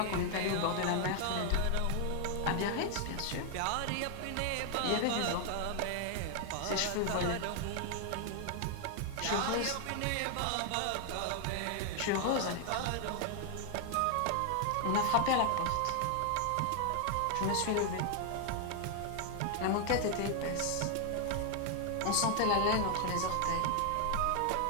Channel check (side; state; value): both; different; correlation 0.00